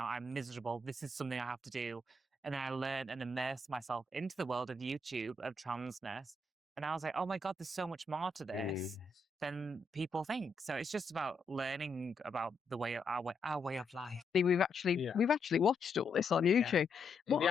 I'm miserable. This is something I have to do. And then I learned and immersed myself into the world of YouTube, of transness. And I was like, oh my God, there's so much more to this than people think. So it's just about learning about the way our way of life. We've actually watched all this on YouTube. Yeah. The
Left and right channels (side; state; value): right; quieter; 3.0 dB